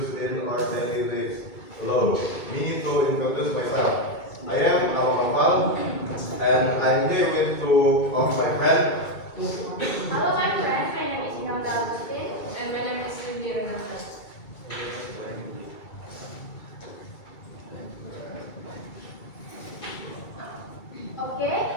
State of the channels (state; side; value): late; right; 2.3 ms